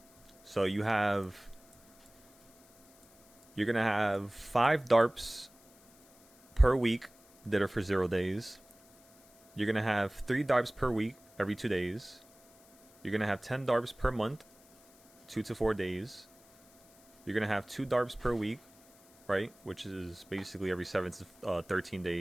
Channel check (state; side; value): noise; left; hiss, 28 dB below the sound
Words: So you're going to have 5 DARPs per week that are for 0 days. You're going to have 3 DARPs per week every 2 days. You're going to have 10 DARPs per month, 2 to 4 days. You're going to have 2 DARPs per week, right? Which is basically every 7 to 13